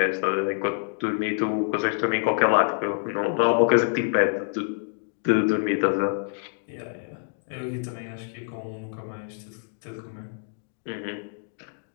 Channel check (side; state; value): right; silent; digital silence